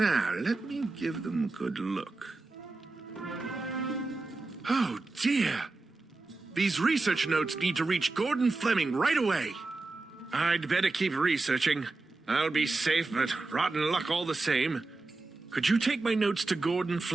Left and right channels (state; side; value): quieter; left; 3.4 dB